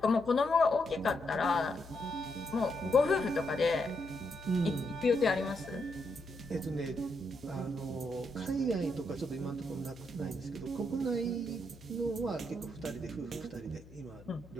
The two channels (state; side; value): noise; left; hum, 21 dB below the sound